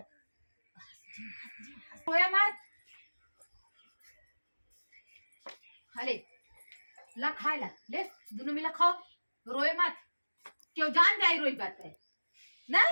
रोया मत हले ला खाए ला ले दोनों मिला खाओ। रोए मत क्यों जान जाए रोई बात है ना।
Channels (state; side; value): inverted; both; correlation -1.00